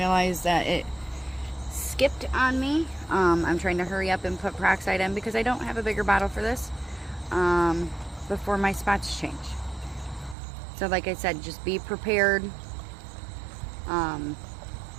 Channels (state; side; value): drops out; left; at 10.4 s